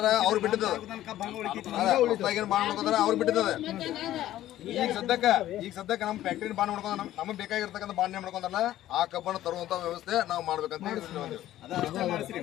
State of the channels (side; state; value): right; quieter; 13.6 dB